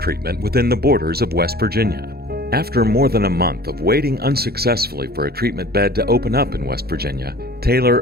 within the borders of West Virginia. After more than a month of waiting unsuccessfully for a treatment bed to open up in West Virginia,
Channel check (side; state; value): left; late; 0.46 ms